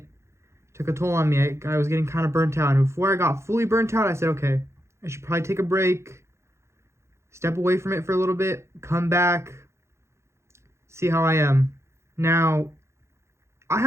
took a toll on me. I was getting kind of burnt out. And before I got fully burnt out, I said, okay, I should probably take a break, step away from it for a little bit, come back, see how I am. Now, I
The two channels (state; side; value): late; left; 0.13 ms